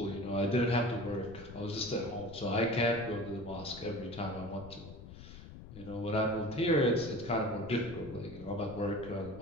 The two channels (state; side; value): noise; left; rumble, 15 dB below the sound